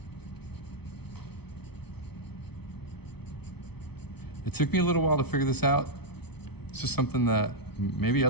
It took me a little while to figure this out. It's just something that maybe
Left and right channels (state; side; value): late; right; 0.98 ms